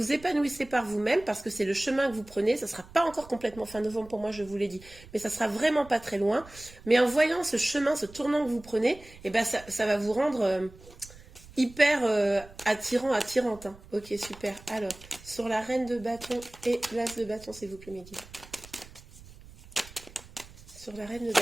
épanouissez par vous-même, parce que c'est le chemin que vous prenez, ça ne sera pas encore complètement fin novembre pour moi, je vous l'ai dit, mais ça sera vraiment pas très loin. Mais en voyant ce chemin, ce tournant que vous prenez, eh ben ça va vous rendre hyper attirante. Hein. Ok, super. Alors, sur la reine de bâton et l'as de bâton, s'il vous plaît, Mehdi. Sur la reine de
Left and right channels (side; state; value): right; noise; rumble, 20 dB below the sound